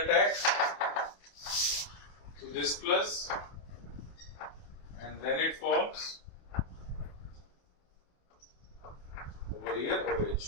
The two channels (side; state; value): right; late; 28 ms